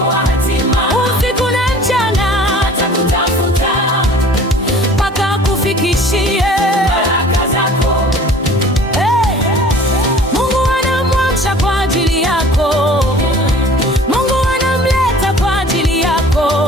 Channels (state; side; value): normal; both; correlation 0.48